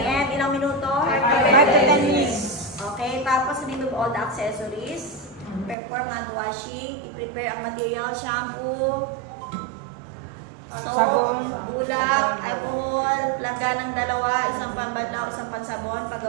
Ilang minuto? 5 to 10 minutes. Okay, tapos remove all the accessories. Perform hand washing. I-prepare ang material, shampoo, soap, bulak, alcohol, langganang dalawa, isang pambanlaw, isang pansabon,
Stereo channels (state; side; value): drops out; left; at 5.8 s